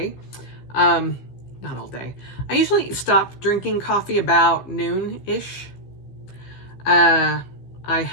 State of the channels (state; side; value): late; right; 15 ms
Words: Not all day. I usually stop drinking coffee about noon-ish. I